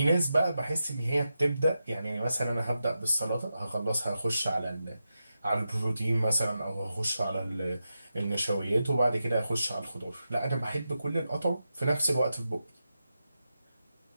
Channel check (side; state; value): both; inverted; correlation -0.89